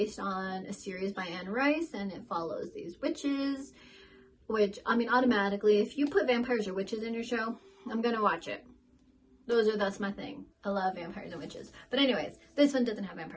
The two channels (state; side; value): identical; both; correlation 1.00